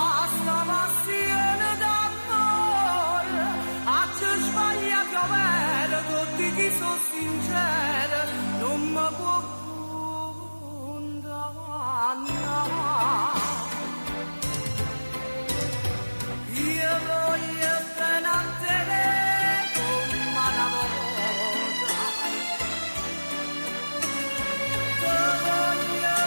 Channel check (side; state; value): both; inverted; correlation -1.00